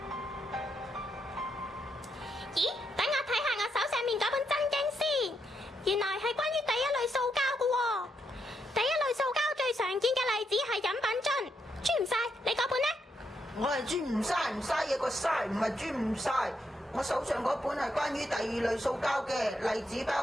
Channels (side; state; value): both; normal; correlation 0.80